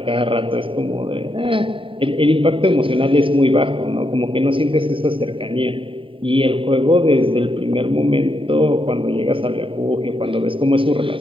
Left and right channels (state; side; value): late; left; 0.25 ms